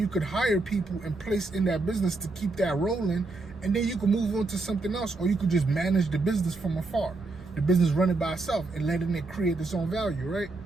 could hire people and place in that business to keep that rolling, and then you can move on to something else, or you could just manage the business from afar. The business running by itself and letting it create its own value, right?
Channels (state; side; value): quieter; left; 3.3 dB